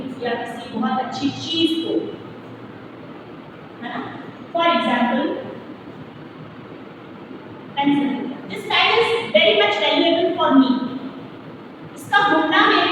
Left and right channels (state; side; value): identical; both; correlation 1.00